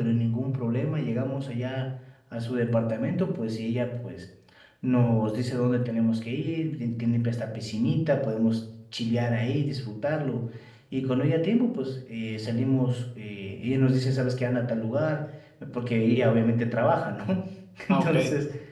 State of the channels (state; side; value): identical; both; correlation 1.00